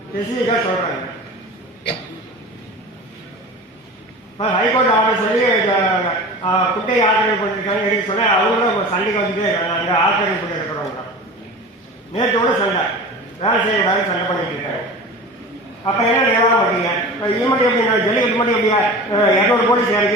ஸ்பெசிஃபிக்காக சொல்கிறாங்க. இப்போ ஹைகோர்ட் ஆர்டர் சொல்லி குட்டை ஆக்கிரமிப்பு பண்ணியிருக்காங்க எடுக்க சொன்னால் அவங்களும் சண்டைக்கு வந்துட்டே இருக்காங்க. அங்கே ஆக்கிரமிப்பு பண்ணி இருக்கிறவங்க நேற்றோட சண்டை வேலை செய்யக்கூடாது சண்டை பண்ணிட்டு இருக்காங்க. அப்போ என்ன நிலவரம் பார்த்தீங்க? இப்போ இது மட்டும் எப்படின்னா ஜல்லிக்கட்டு மட்டும் எப்படியா 200 போலீஸ்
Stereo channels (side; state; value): both; normal; correlation 0.35